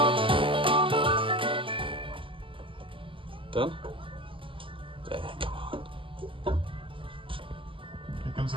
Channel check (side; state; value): left; late; 0.25 ms